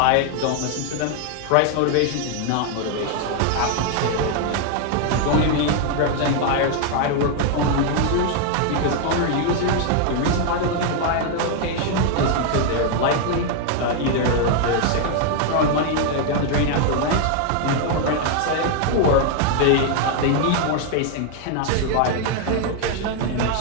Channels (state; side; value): different; both; correlation 0.00